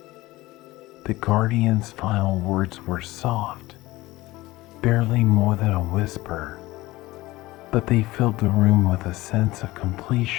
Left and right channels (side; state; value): right; quieter; 19.0 dB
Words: The guardian's final words were soft, barely more than a whisper, but they filled the room with a sense of